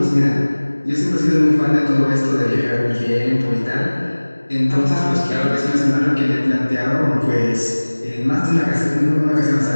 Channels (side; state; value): both; inverted; correlation -1.00